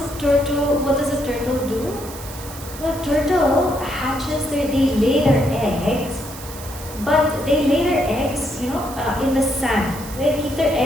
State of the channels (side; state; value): right; noise; hiss, 14 dB below the sound